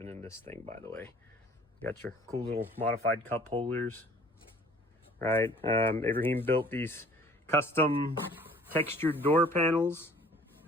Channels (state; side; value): normal; both; correlation 0.53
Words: in this thing, by the way. Got your cool little modified cup holders, right? Abraham built these custom textured door panels